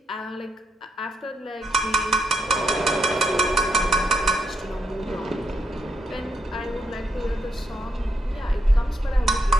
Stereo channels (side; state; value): both; normal; correlation 0.80